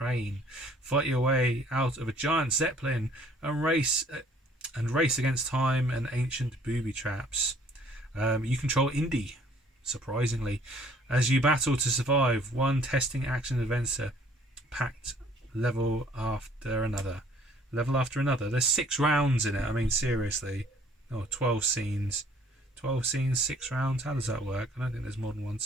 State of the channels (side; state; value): both; normal; correlation 0.58